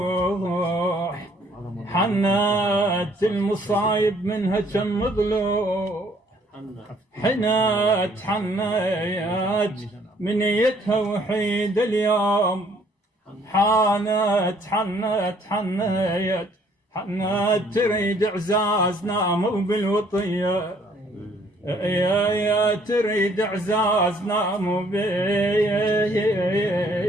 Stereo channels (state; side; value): normal; both; correlation 0.62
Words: حنت المصايب منها كم ضلوع، حنت منيتها وحيد اليوم، حنت تريد اعزاز ناموا بالوطيه، يا تريد اعزاز ناموا